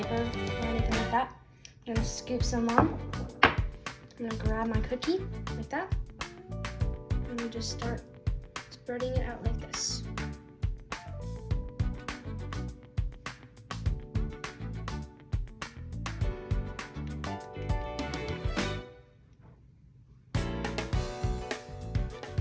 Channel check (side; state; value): both; identical; correlation 1.00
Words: or anything like that. I'm gonna scoop some on. I'm gonna grab my cookie like that. And we just start spreading it out like this.